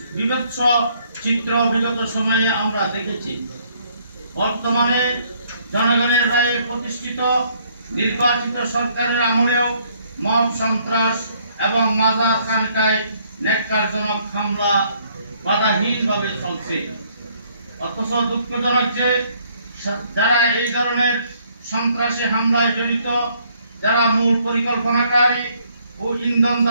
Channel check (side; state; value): both; inverted; correlation -0.66